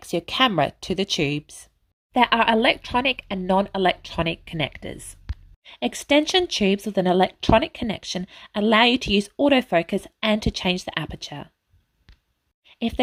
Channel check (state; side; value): identical; both; correlation 1.00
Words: your camera to the tubes. There are electronic and non-electronic connectors. Extension tubes with an electronic connection allow you to use autofocus and to change the aperture. If